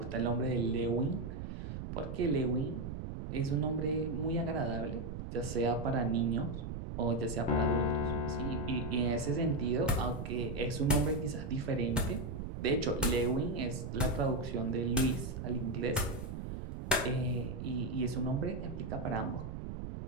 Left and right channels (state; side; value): noise; right; rumble, 6 dB below the sound